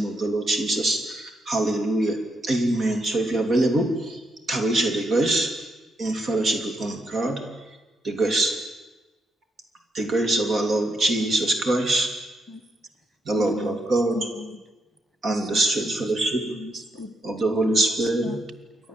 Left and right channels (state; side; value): normal; both; correlation 0.80